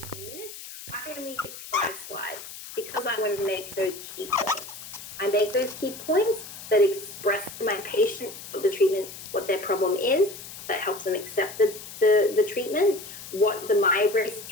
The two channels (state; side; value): noise; left; hiss, 13 dB below the sound